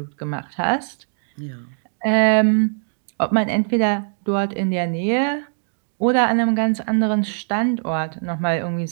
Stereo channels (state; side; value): silent; left; digital silence